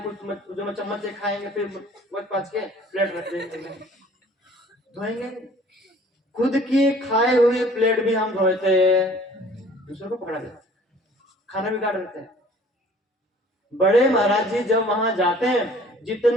कुछ जो चम्मच से खाएंगे, फिर पाँच के प्लेट रख देंगे, धोएंगे। खुद की खाए हुई प्लेट भी हम धोते, दूसरों को पकड़ा देते, खाना बिगाड़ देते हैं। बड़े महाराज जी जब वहां जाते हैं,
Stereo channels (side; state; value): both; normal; correlation 0.52